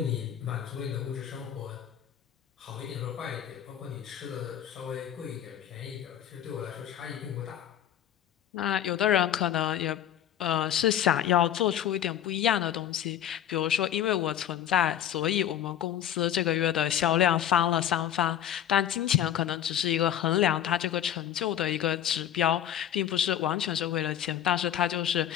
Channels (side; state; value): right; quieter; 10.6 dB